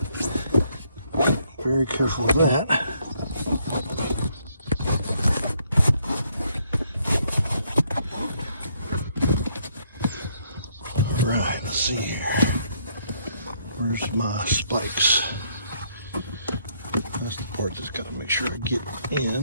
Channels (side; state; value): both; inverted; correlation -0.70